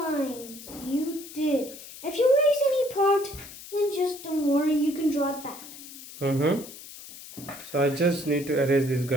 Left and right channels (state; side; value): noise; left; hiss, 15 dB below the sound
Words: you did. If you erase any part, then just don't worry, you can draw it back. Mm-hmm. So I just need to erase this